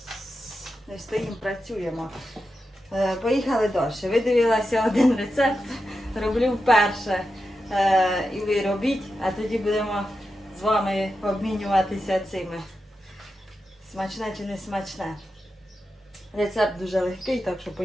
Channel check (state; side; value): normal; both; correlation 0.89